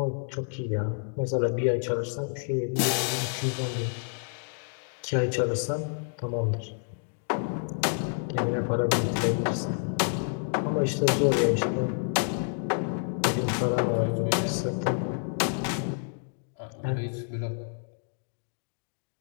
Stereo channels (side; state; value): right; silent; 59 dB below the other